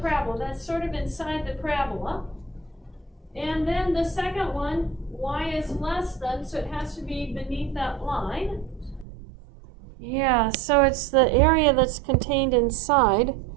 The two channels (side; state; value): left; drops out; at 9.1 s